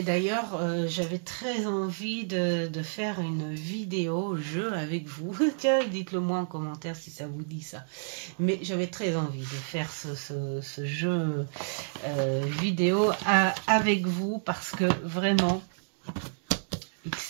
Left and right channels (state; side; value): silent; left; digital silence